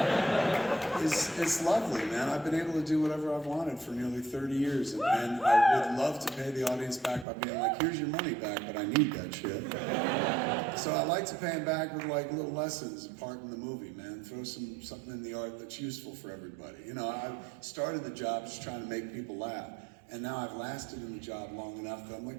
it's lovely, man. I've been able to do whatever I've wanted for nearly 30 years, and I would love to pay the audience back by being like, here's your money back, but I need that shit. So I like to pay them back with like little lessons, part in the movie, man. Throw something in the art that's useful for everybody. You know, I started the job just trying to make people laugh. And now I've lasted in the job long enough that I'm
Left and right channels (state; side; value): drops out; left; at 7.2 s